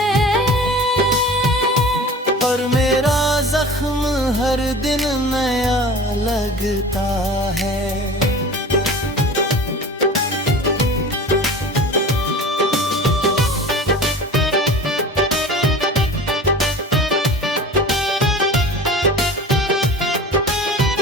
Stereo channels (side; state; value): both; normal; correlation 0.38